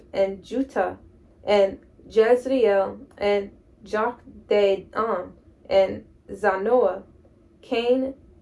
and Juttah, and Jezreel, and Jokdeam, and Zanoah, Cain,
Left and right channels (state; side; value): identical; both; correlation 1.00